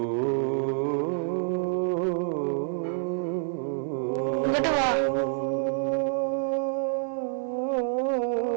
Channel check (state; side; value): silent; left; 60 dB below the other